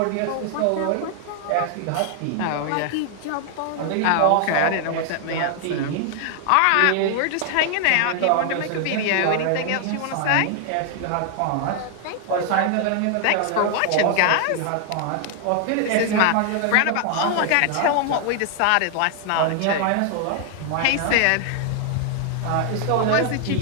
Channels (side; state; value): both; different; correlation 0.00